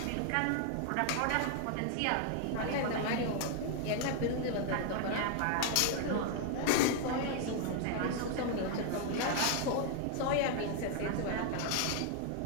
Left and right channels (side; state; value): both; different; correlation 0.00